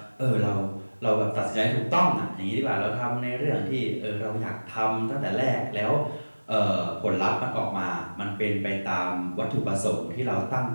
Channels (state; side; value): inverted; both; correlation -1.00